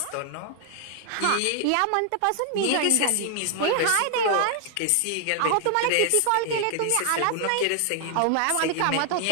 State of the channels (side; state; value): both; different; correlation 0.00